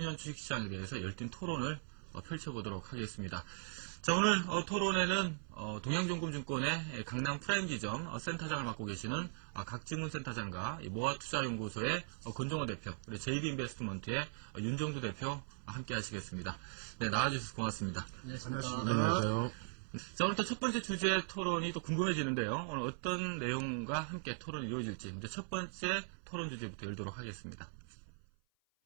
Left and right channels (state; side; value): silent; left; 52 dB below the other